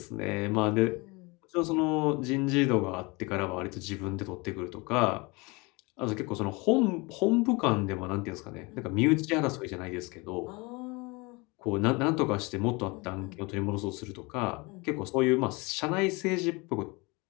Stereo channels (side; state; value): right; quieter; 26.4 dB